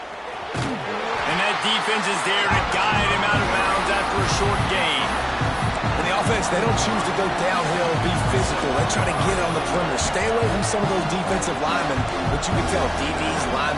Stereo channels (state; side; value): identical; both; correlation 1.00